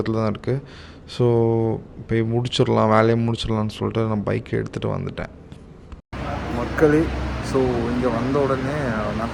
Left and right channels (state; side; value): identical; both; correlation 1.00